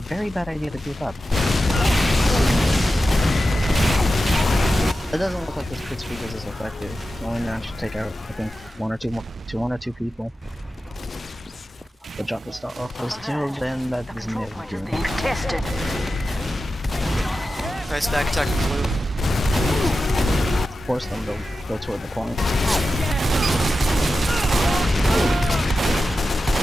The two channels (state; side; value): normal; both; correlation 0.92